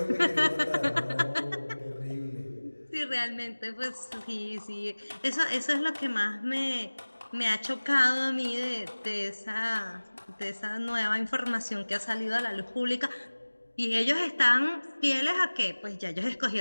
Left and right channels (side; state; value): both; inverted; correlation -1.00